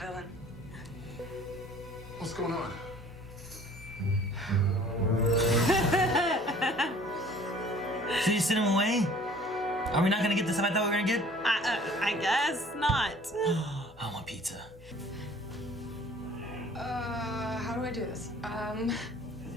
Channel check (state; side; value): normal; both; correlation 0.51